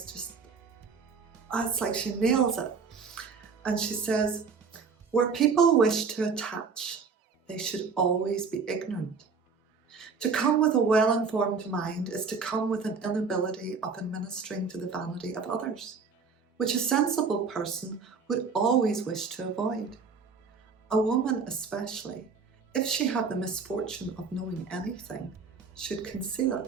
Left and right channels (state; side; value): quieter; left; 5.2 dB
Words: just, it's like she nails it. And she says, where people wish to attach, they should always be ignorant. To come with a well-informed mind is to come with an inability of administering to the vanity of others, which a sensible person would always wish to avoid. A woman especially, if she have the misfortune of knowing anything, should conceal